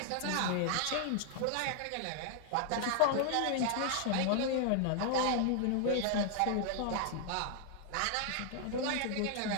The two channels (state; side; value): different; both; correlation 0.00